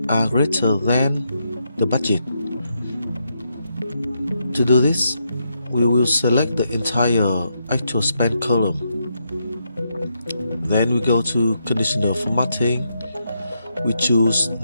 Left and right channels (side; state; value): both; inverted; correlation -0.80